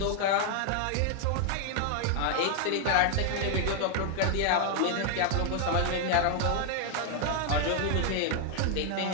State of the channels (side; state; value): both; different; correlation 0.00